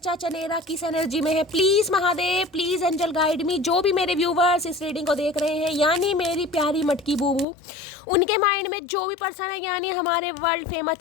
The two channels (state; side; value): drops out; right; at 7.5 s